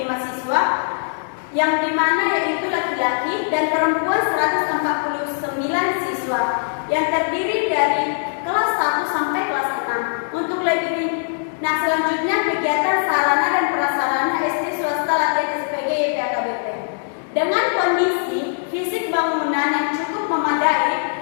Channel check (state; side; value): silent; right; digital silence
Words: siswa, yang dimana yaitu laki-laki dan perempuan 149 siswa, yang terdiri dari kelas 1 sampai kelas 6. Untuk lebih, nah selanjutnya kegiatan sarana dan prasarana SD swasta latihan SPG YP HKBP. Dengan kondisi fisik bangunan yang cukup memadai,